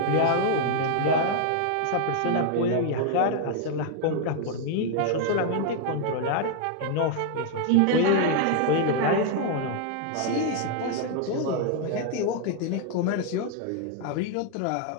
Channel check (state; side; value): different; both; correlation 0.00